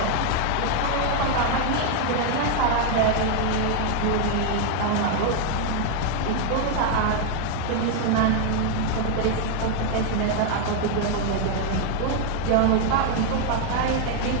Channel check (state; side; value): different; both; correlation 0.00